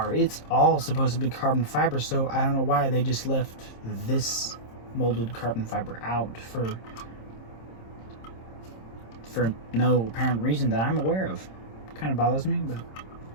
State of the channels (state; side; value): late; right; 26 ms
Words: it's all supposed to be carbon fiber, so I don't know why they just left this molded carbon fiber out for no apparent reason that I'm aware of. Kind of bothers me, but